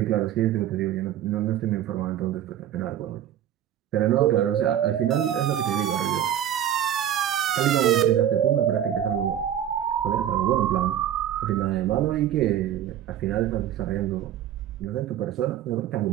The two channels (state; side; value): quieter; left; 10.7 dB